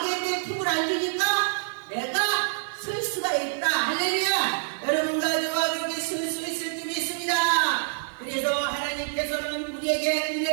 품을 안 주니까 내가 설 수가 있다. 할렐루야. 여러분과 저와 그렇게 설 수 있을 줄 믿습니다. 그래서 하나님께서는 우리에게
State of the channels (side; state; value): left; silent; digital silence